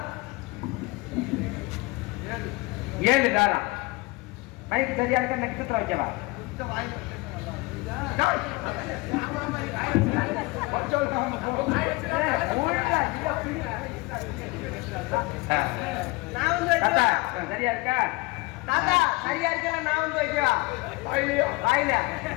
7 தாரம். மைக்கு சரியா இருக்க நட்சத்திரம் வைக்கவா? சரியா இருக்கா? தாத்தா சரியா இருக்கா? நான் வந்து வைக்கவா? வாயில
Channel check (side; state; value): right; quieter; 24.0 dB